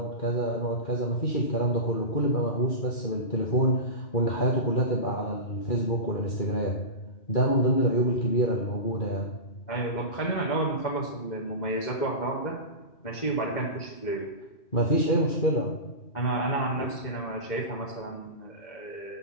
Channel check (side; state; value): right; late; 2.1 ms